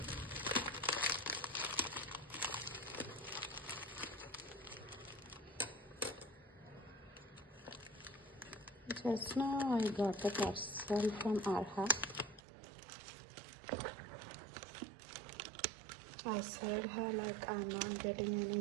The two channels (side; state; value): left; drops out; at 12.4 s